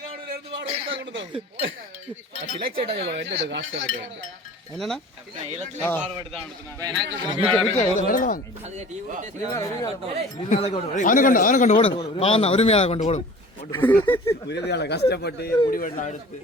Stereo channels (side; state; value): both; normal; correlation 0.43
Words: என்னன்னா அவனை கொண்டு ஓடும் பாவம் உரிமையாளர் கொண்டு ஓடும். உரிமையாளர் கஷ்டப்பட்டு முடிவெல்லாம் எடுத்து